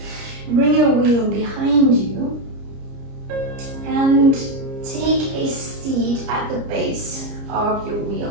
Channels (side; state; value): left; late; 30 ms